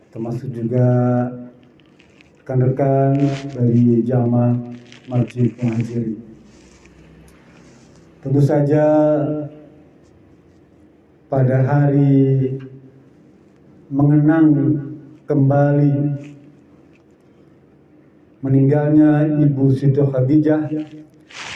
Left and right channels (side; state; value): both; identical; correlation 1.00